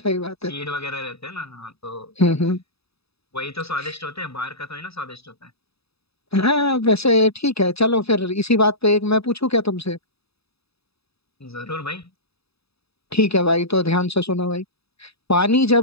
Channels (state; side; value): late; right; 0.78 ms